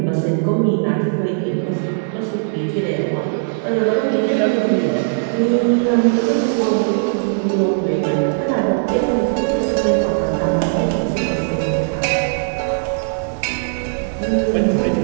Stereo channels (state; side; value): silent; left; digital silence